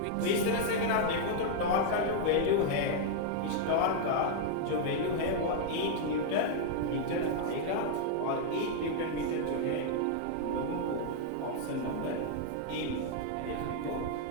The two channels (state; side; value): different; both; correlation 0.00